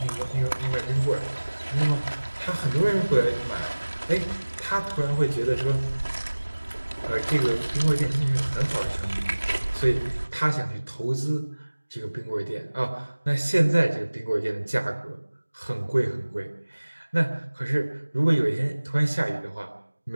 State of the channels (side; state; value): both; inverted; correlation -1.00